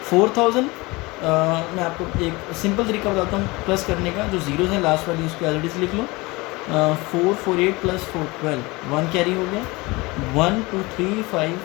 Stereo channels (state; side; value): quieter; right; 23.5 dB